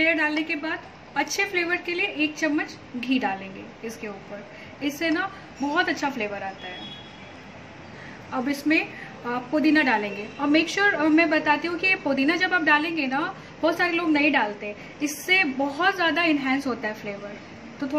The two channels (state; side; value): identical; both; correlation 1.00